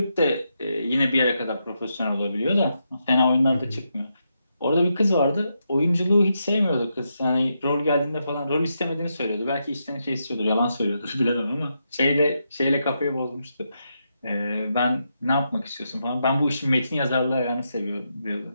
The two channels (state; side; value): inverted; both; correlation -0.83